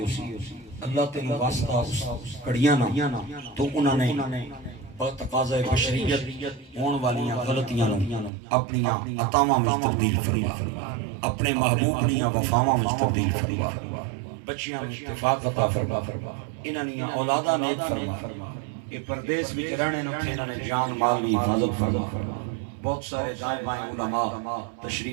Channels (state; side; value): drops out; left; at 8.3 s